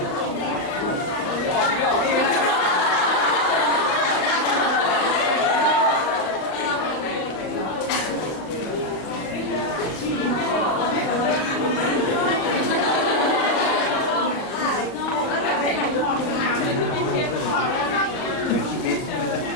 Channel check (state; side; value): late; right; 39 ms